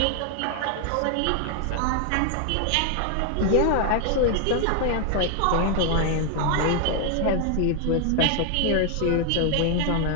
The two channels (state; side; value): different; both; correlation 0.01